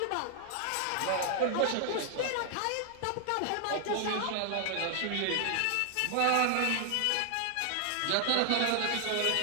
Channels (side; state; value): both; different; correlation 0.00